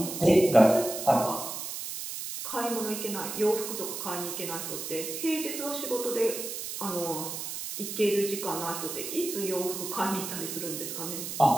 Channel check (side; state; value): right; noise; hiss, 6 dB below the sound